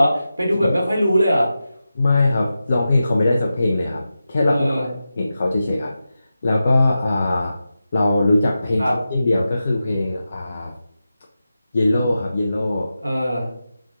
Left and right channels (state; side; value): inverted; both; correlation -0.92